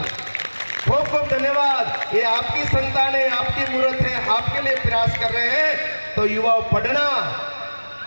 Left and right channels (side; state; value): both; inverted; correlation -1.00